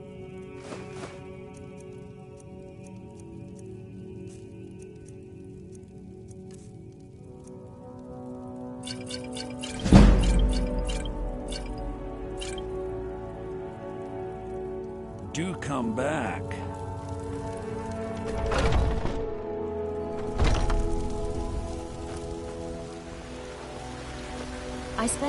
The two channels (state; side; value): identical; both; correlation 1.00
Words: Do come back. I